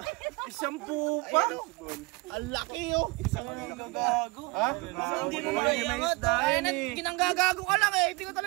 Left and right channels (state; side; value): quieter; left; 25.7 dB